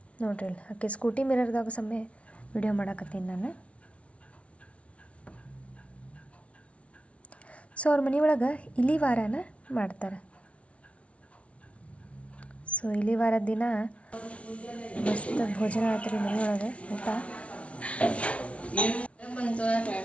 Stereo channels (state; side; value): late; right; 0.063 ms